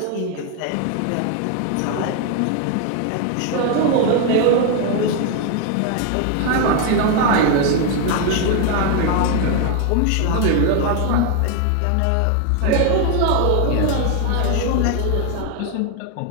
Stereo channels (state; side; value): different; both; correlation 0.01